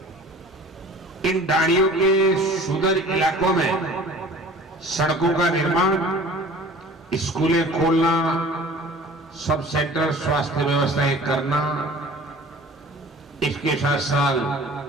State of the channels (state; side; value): normal; both; correlation 0.45